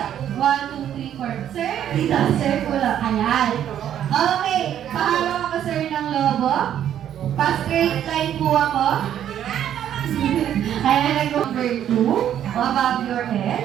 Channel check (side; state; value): left; quieter; 10.3 dB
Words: 1, 2, 3, 4? Sir, dito, sir, kulang. Ayan. Okay, pahalo ako sir ng lobo. Pa-straight line po ako. Ayan, number 2. Above your